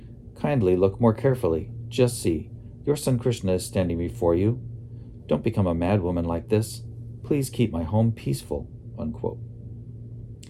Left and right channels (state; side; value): identical; both; correlation 1.00